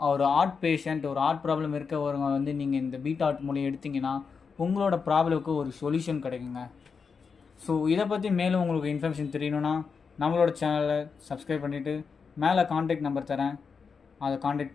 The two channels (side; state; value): right; quieter; 5.5 dB